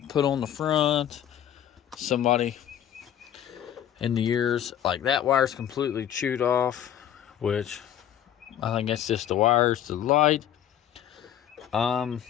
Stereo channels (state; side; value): quieter; right; 10.5 dB